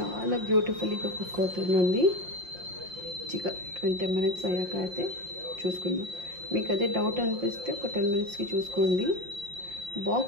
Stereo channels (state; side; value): late; left; 5.6 ms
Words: బ్యూటిఫుల్గా కుక్ అవుతుందండి. 20 minutes అయ్యాక అయితే చూసుకుందాం. మీకు అదే డౌట్ అనిపిస్తే ఒక 10 minutesకి చూసుకోండి.